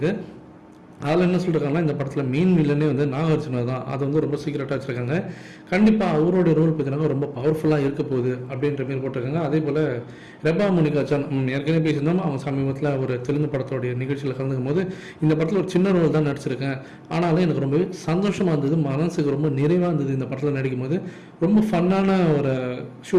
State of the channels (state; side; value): identical; both; correlation 1.00